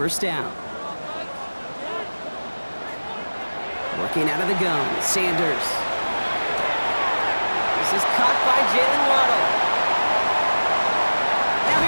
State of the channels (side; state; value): both; inverted; correlation -1.00